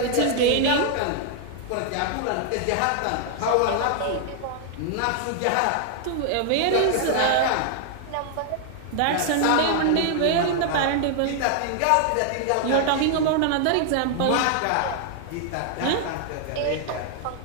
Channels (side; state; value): both; different; correlation 0.00